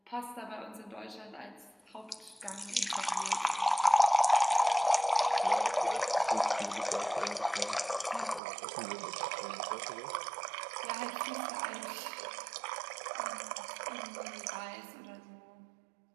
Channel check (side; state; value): left; drops out; at 8.4 s